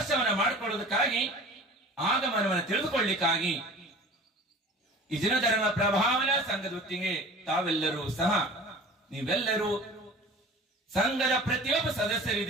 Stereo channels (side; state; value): both; normal; correlation 0.41